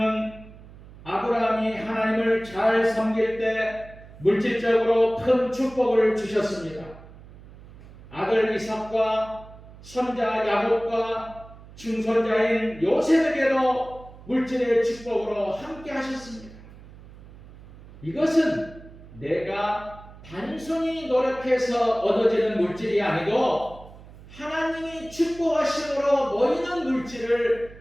아브라함이 하나님을 잘 섬길 때 물질적으로 큰 축복을 주셨습니다. 아들 이삭과 손자 야곱과 중손자인 요셉에게도 물질의 축복으로 함께 하셨습니다. 이것은 내가 단순히 노력해서 얻어지는 물질이 아니고 하나님이 축복하심으로 모이는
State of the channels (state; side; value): noise; right; hum, 19 dB below the sound